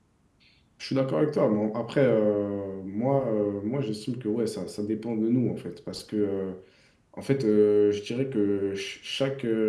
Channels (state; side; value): identical; both; correlation 1.00